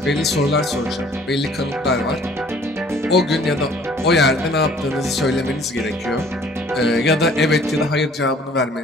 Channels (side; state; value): both; normal; correlation 0.55